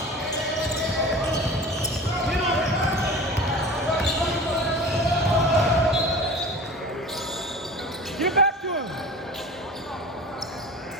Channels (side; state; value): both; normal; correlation 0.37